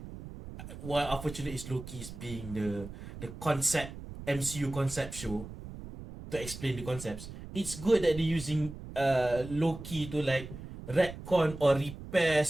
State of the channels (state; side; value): noise; right; rumble, 12 dB below the sound